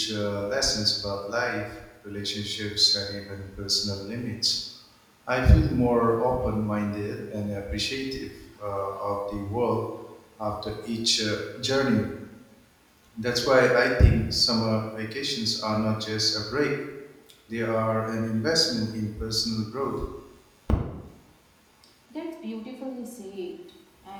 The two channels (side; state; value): both; identical; correlation 1.00